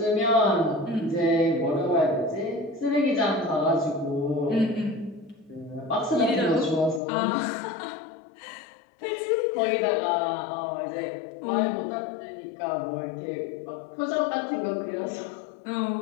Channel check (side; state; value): right; drops out; at 7.0 s